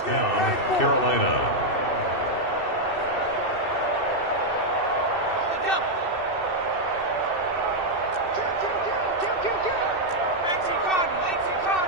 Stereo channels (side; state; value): right; late; 2.6 ms